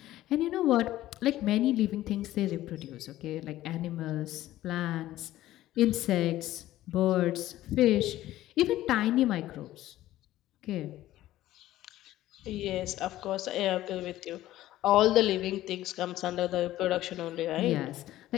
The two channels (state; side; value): quieter; right; 14.7 dB